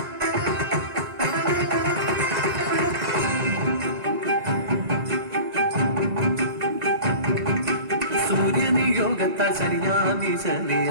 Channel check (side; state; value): left; late; 2.0 ms